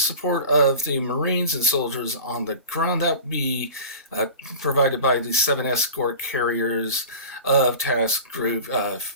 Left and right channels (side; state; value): both; inverted; correlation -0.36